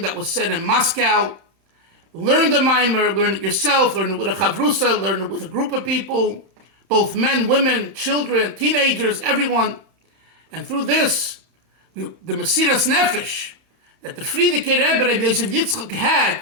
that was said in Moscow. Learn the Maamar, learn it yourself, learn it with a chavrusa, learn it with a group of people, both men, women, children, teenagers, everyone. And through this, the Mesiras Nefesh that the Frierdiker Rebbe, Rabbi Yosef Yitzchak, had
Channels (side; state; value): left; late; 31 ms